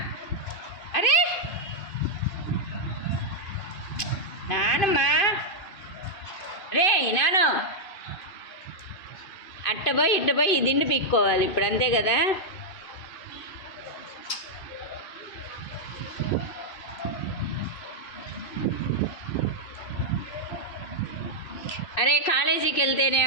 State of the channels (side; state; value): right; late; 2.5 ms